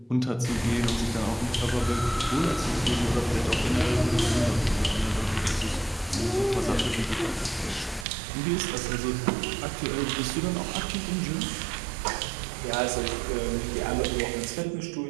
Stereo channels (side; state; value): left; drops out; at 8.1 s